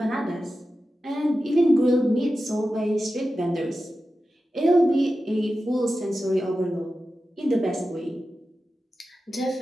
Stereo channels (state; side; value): normal; both; correlation 0.93